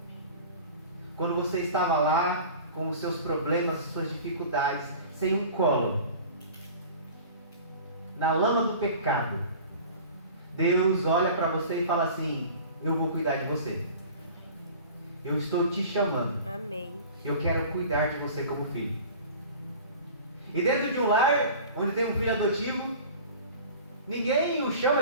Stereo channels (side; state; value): both; inverted; correlation -0.41